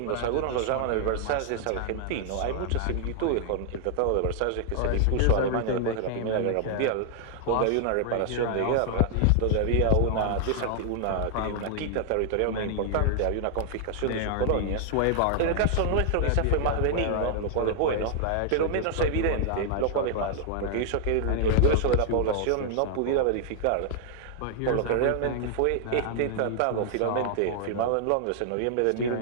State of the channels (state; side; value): different; both; correlation 0.00